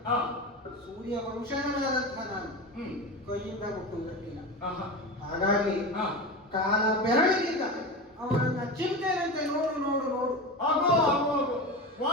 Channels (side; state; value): both; normal; correlation 0.24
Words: ಹಾ ಸೂರ್ಯ ವಂಶಜನಾದಂತಹ ನಾನು ಹ್ಮ್ ಕೈಯಿಂದ ಮುಟ್ಟುವುದಕ್ಕಿಲ್ಲ. ಆಹಾ ಹಾಗಾಗಿ ಹಾ ಕಾಲ ಬೆರಳಿಗಿಂತ ಅವರನ್ನ ಚಿಂತೆನಂತೆ ನೋಡು ನೋಡು ನೋಡು. ಆಗೋ ಆಗೋ ಆಗೋ